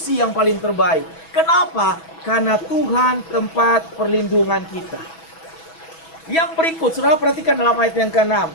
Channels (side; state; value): right; late; 6.1 ms